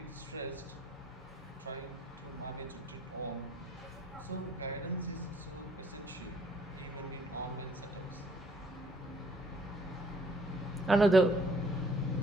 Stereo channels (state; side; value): normal; both; correlation 0.62